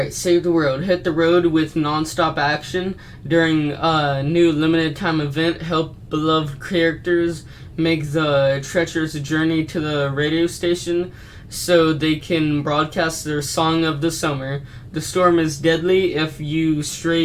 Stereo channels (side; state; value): both; identical; correlation 1.00